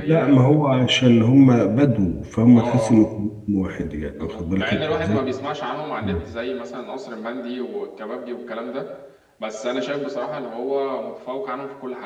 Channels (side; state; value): both; identical; correlation 1.00